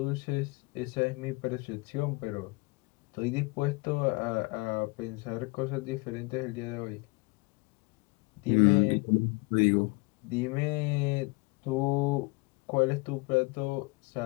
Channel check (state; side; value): quieter; right; 26.3 dB